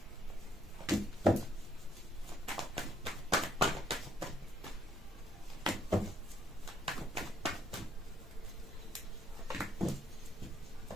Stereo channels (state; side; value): normal; both; correlation 0.69